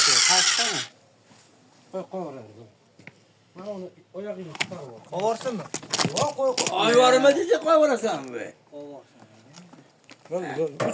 Kaçta mı? Koy oraya. Ben onu oyakını tutarım. Kovarsın mı? Yok koy. Ay varma diyecek koy orası be. Böyle.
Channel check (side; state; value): both; identical; correlation 1.00